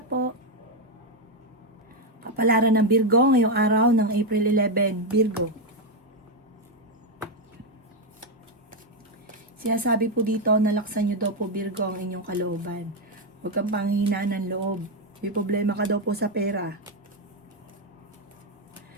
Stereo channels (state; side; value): normal; both; correlation 0.04